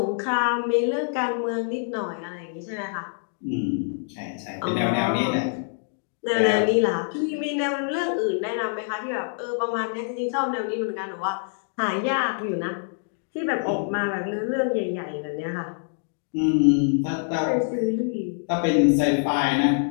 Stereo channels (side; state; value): right; silent; digital silence